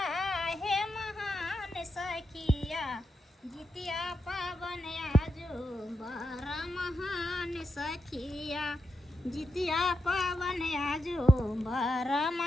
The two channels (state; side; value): normal; both; correlation 0.86